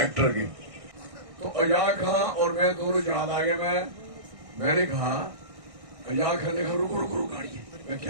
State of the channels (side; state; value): left; late; 1.6 ms